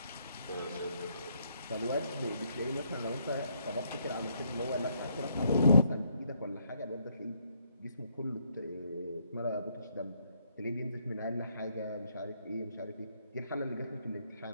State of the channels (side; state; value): both; inverted; correlation -0.72